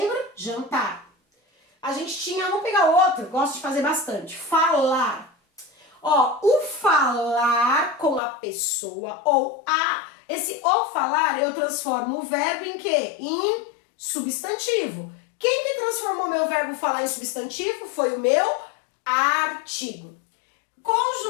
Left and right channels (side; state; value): right; drops out; at 8.2 s